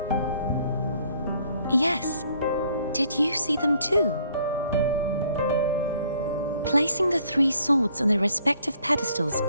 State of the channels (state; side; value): inverted; both; correlation -0.63